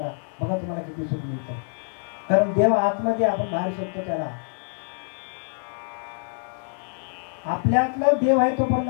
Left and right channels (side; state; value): right; silent; digital silence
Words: बघा तुम्हाला किती सुख मिळतं. कारण देव आतमध्ये, आपण बाहेर शोधतो त्याला. आपल्यातला देव आहे तोपर्यंत